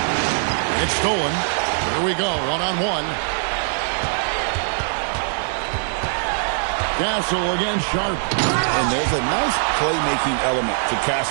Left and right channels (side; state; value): left; silent; digital silence